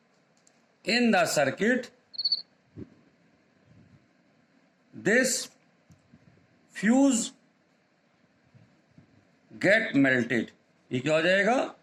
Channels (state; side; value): identical; both; correlation 1.00